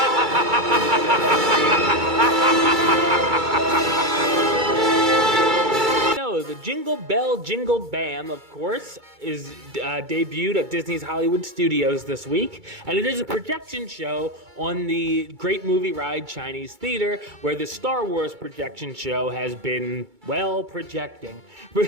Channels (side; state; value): left; late; 2.3 ms